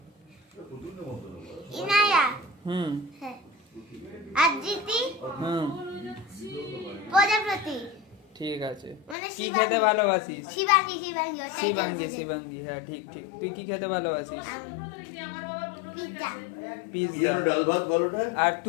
ইনায়া। হুম। হ্যাঁ। আদিতি। হুম। প্রজাপতি। ঠিক আছে। মানে কি খেতে ভালোবাসিস? শিবাঙ্গী। শিবাঙ্গী, হ্যাঁ ঠিক ঠিক। তুই কি খেতে ভালোবাসিস? পিজ্জা। পিজ্জা। ডাল ভাত বলোটা। আর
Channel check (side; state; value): right; drops out; at 9.2 s